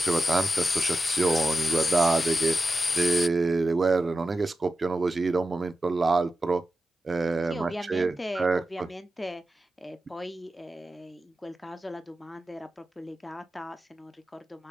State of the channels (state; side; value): normal; both; correlation 0.92